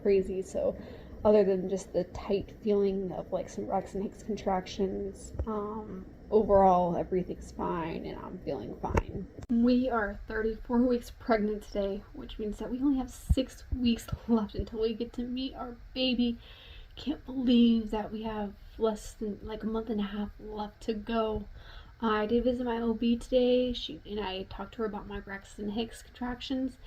crazy, so other than just the tight feeling of like some Braxton Hicks contractions, overall everything's fine and I'm feeling fine. We are 34 weeks pregnant today, which means that we only have 6 weeks left until we get to meet our baby. Can't believe that we have less than like a month and a half left to go. I did visit my OB today. I talked to her about my Braxton Hicks contractions,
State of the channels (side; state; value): both; identical; correlation 1.00